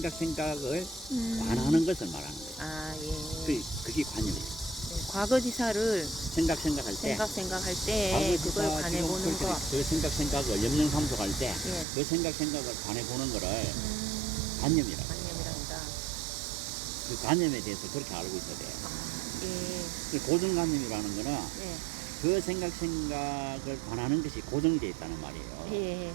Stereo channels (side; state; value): left; drops out; at 11.9 s